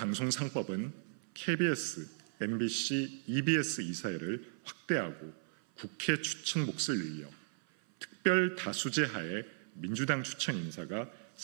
3법은 KBS, MBC, EBS 이사회를 확대하고 국회 추천 몫을 늘려 특별 다수제 하에 민주당 추천 인사가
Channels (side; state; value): left; silent; 54 dB below the other